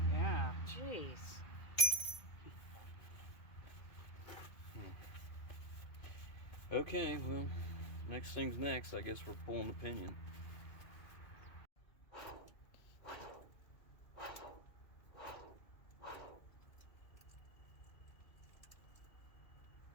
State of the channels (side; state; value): right; late; 2.3 ms